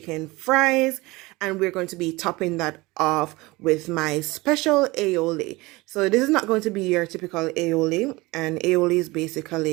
fries, and we're going to be topping that off with my special aioli. So this is not going to be your typical aioli, and aioli is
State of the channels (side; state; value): left; quieter; 22.1 dB